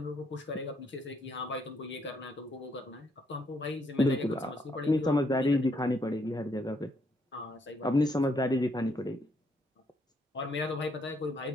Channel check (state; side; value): normal; both; correlation 0.73